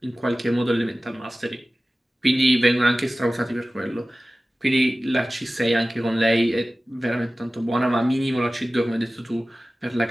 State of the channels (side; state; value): both; normal; correlation 0.96